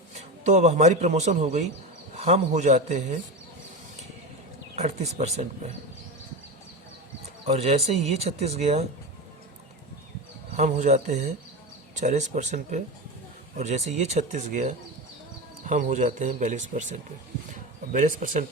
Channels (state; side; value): normal; both; correlation 0.22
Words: तो अब हमारी प्रमोशन हो गई, हम हो जाते हैं 38% पे। और जैसे ही ये 36 गया हम हो जाते हैं 40% पे, और जैसे ये 36 गया हम हो जाते हैं 42% पे, और 42%